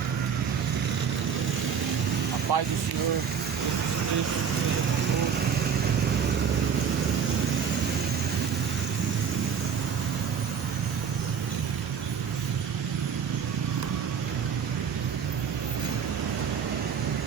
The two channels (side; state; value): left; quieter; 7.1 dB